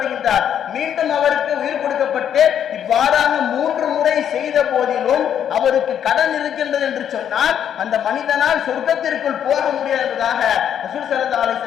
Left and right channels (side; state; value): right; quieter; 9.2 dB